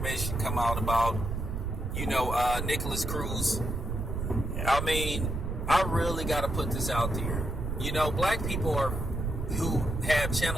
come out about, Nicholas Cruz. I mean, I really got to put this out there. Black people who have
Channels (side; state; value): right; noise; rumble, 3 dB below the sound